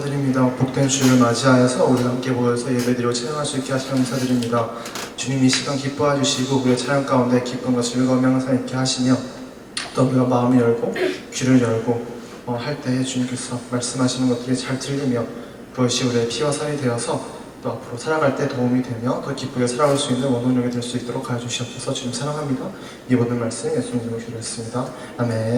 복된 주를 맞이하여서 우리 함께 모여서 예배드리고 찬양할 수 있게 하시며 감사드립니다. 주님 이 시간 기뻐해 주시고 우리의 찬양 가운데 기쁨과 즐거움이 항상 있게 하시며 또 우리가 마음을 열고 귀를 열고 할 때에 주님께서 말씀하시는 것들이 잘 들리며 그것이 우리의 피와 살이 되어서 또 앞으로 살아갈 때 도움이 되며 더 기쁘게 살아갈 수 있는 원동력이 될 수 있도록 하여 주시옵소서. 주님 사랑합니다. 이 모든 말씀 예수님 이름으로 기도했습니다.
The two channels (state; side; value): identical; both; correlation 1.00